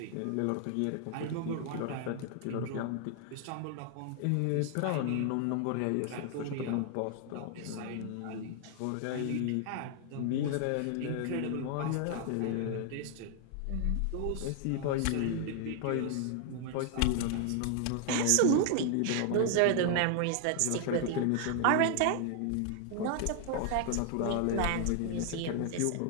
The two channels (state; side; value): different; both; correlation 0.00